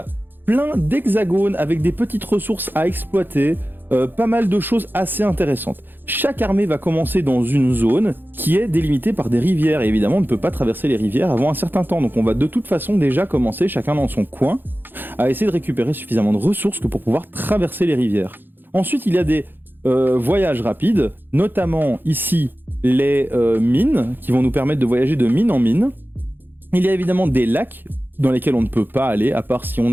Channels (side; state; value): left; late; 0.095 ms